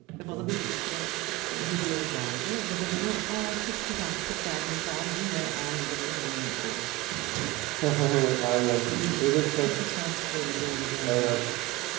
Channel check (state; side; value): quieter; left; 20.0 dB